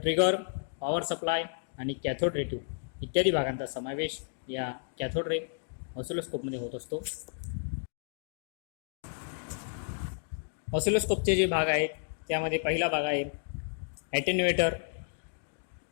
पॉवर सप्लाय आणि कॅथोड रे ट्यूब इत्यादी भागांचा समावेश या कॅथोड रे ऑसिलोस्कोपमध्ये होत असतो. ऑसिलोस्कोपचे जे भाग आहेत त्यामध्ये पहिला भाग आहे ॲटेन्युएटर.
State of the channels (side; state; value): right; silent; digital silence